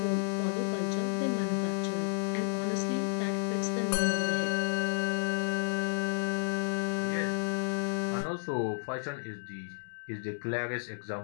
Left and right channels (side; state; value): right; silent; digital silence